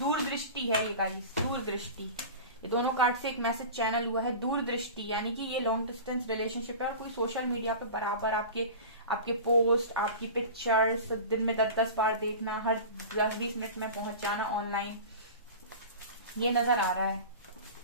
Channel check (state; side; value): inverted; both; correlation -0.34